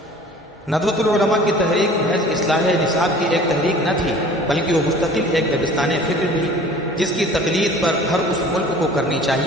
ندوۃ العلماء کی تحریک محض اصلاح نصاب کی ایک تحریک نہ تھی، بلکہ وہ مستقل ایک دبستان فکر بھی، جس کی تقلید پر ہر اس ملک کو کرنی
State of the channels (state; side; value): normal; both; correlation 0.47